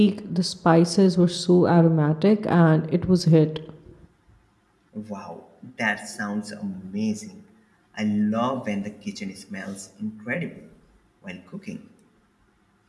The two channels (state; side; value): identical; both; correlation 1.00